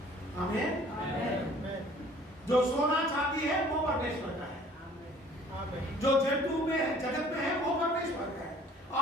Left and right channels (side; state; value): both; normal; correlation 0.53